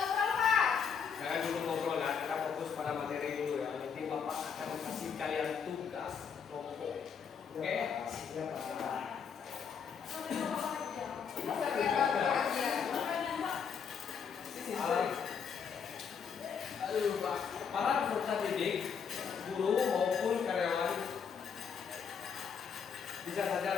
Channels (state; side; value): quieter; right; 6.8 dB